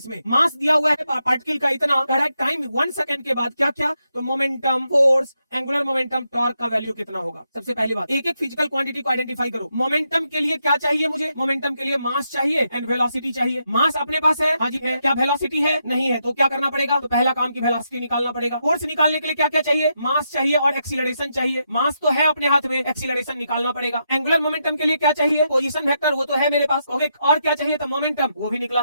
में, मास दिया हुआ है पार्टिकल का इतना, कह रहा है टाइम 1 सेकंड के बाद क्या क्या, तो momentum, force, angular momentum, torque का वैल्यू कितना होगा। सबसे पहली बात, एक एक फिजिकल क्वांटिटी को आइडेंटिफाई करो। मोमेंटम के लिए क्या चाहिए मुझे, मोमेंटम के लिए मास चाहिए एंड वेलोसिटी चाहिए। मास अपने पास है, हाँ जी है, क्या वेलोसिटी है, नहीं है, तो क्या करना पड़ेगा, तो पहला काम की वेलोसिटी निकालना पड़ेगा। फोर्स निकालने के लिए क्या क्या चाहिए, मास चाहिए और एक्सीलरेशन चाहिए, मास तो है अपने हाथ में, एक्सीलरेशन निकालना पड़ेगा। एंगुलर मोमेंटम के लिए क्या चाहिए, पोजीशन वेक्टर, वो तो है मेरे पास, ओके, और क्या चाहिए, तो मोमेंटम, वो भी निकला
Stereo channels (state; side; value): inverted; both; correlation -0.82